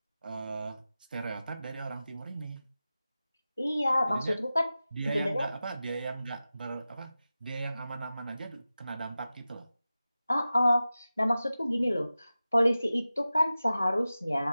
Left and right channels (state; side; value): inverted; both; correlation -0.95